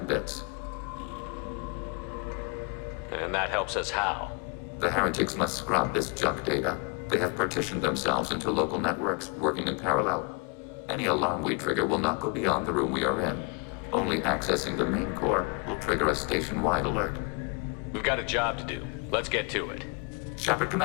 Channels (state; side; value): quieter; right; 33.8 dB